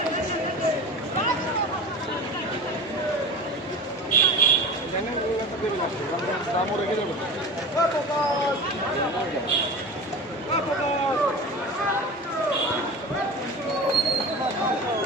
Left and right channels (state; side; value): normal; both; correlation 0.32